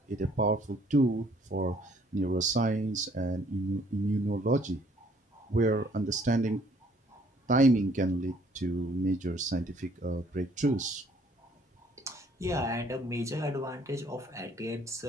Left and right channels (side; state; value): both; normal; correlation 0.61